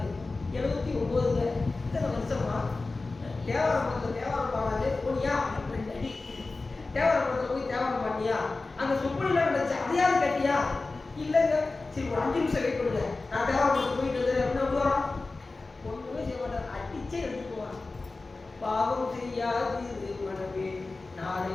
79. இத்தனை வருஷமா தேவாரம் பாடாது போனியா? 2 அடி தேவரப்படத்தில் போய் தேவரம் பண்ணியா, அங்கே சொப்பனிலாம் நடந்துச்சு அதையாவது கட்டியா? இல்லைங்க, சரி ஒரு 5 நிமிஷம் வெயிட் பண்ணுங்க, நான் தேவரப்படத்தில் போயிட்டு வந்து அப்படின்னா வரோம். ஒன்றுமே செய்ய மாட்டார், அடிச்சே எடுத்துக்குவான். பாவம் செய்யாது மனமே நாளை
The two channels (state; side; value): quieter; right; 3.5 dB